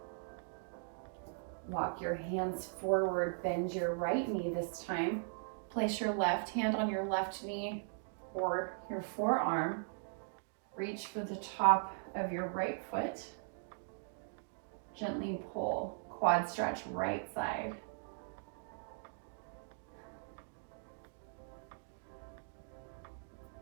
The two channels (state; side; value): silent; left; digital silence